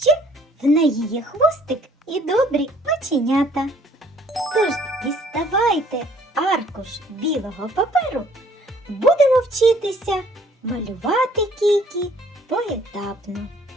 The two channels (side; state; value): both; normal; correlation 0.58